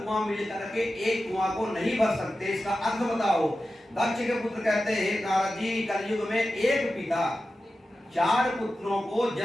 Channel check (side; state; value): both; normal; correlation 0.93